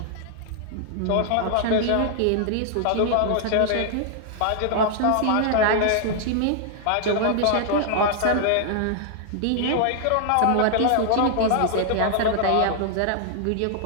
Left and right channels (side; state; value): both; different; correlation -0.01